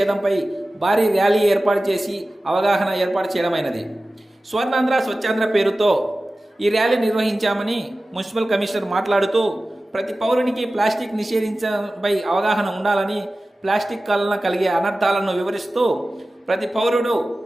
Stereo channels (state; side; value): normal; both; correlation 0.96